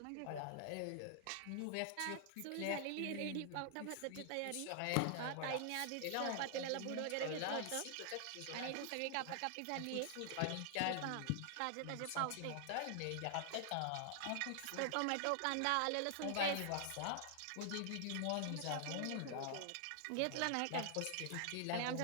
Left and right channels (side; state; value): both; different; correlation 0.00